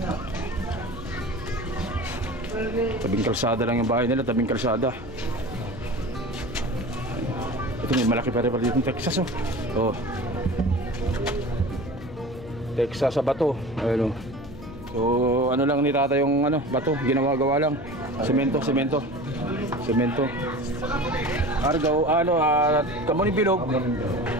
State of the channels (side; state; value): left; noise; hum, 15 dB below the sound